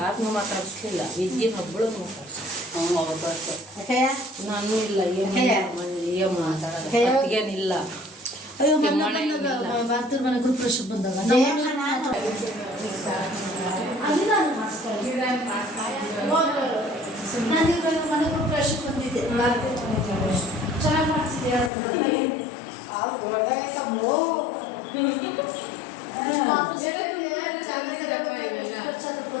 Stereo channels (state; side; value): drops out; right; at 21.7 s